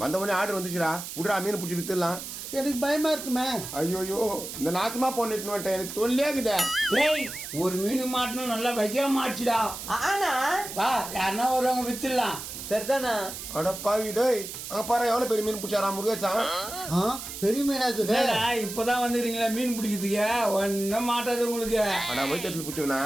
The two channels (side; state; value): right; noise; hiss, 9 dB below the sound